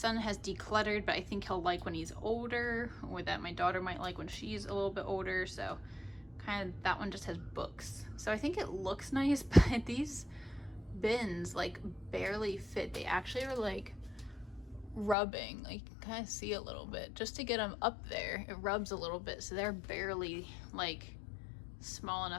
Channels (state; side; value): drops out; right; at 15.2 s